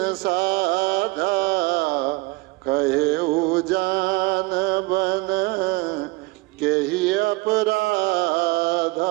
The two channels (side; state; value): left; quieter; 23.6 dB